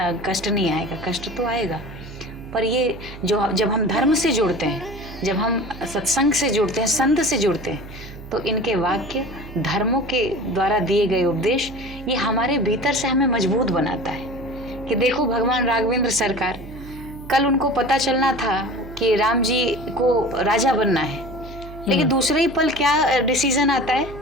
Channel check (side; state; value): right; noise; hum, 14 dB below the sound